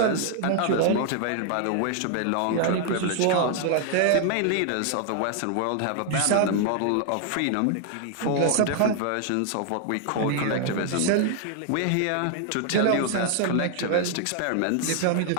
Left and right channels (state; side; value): different; both; correlation 0.00